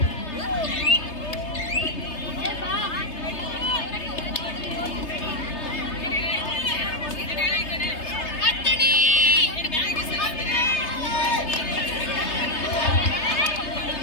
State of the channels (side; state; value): right; late; 3.3 ms